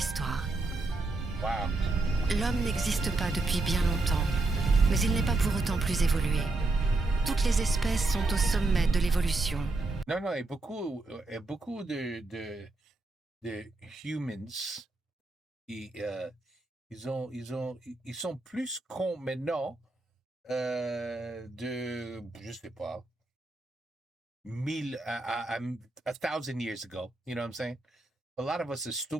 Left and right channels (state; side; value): quieter; left; 3.1 dB